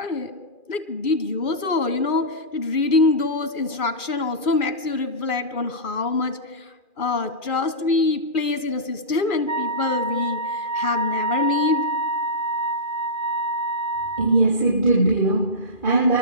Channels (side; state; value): right; late; 2.4 ms